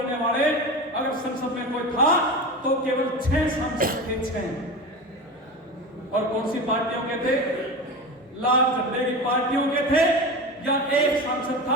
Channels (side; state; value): both; normal; correlation 0.27